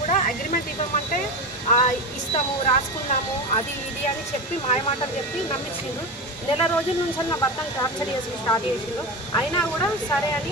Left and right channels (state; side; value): normal; both; correlation 0.22